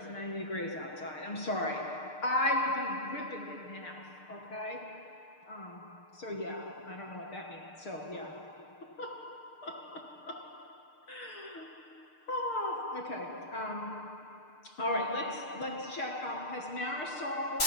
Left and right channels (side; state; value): right; late; 6.6 ms